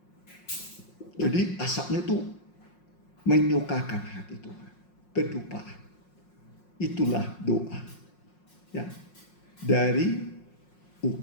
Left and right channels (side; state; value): right; late; 5.5 ms